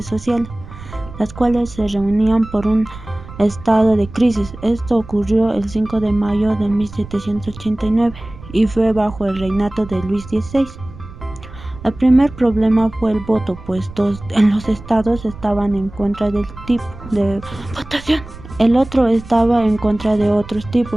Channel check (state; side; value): noise; right; rumble, 16 dB below the sound